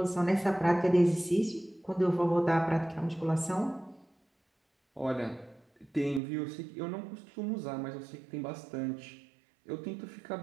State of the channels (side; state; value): left; drops out; at 6.2 s